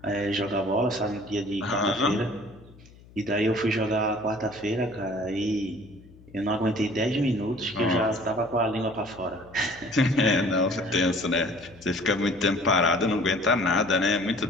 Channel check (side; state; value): left; noise; hum, 23 dB below the sound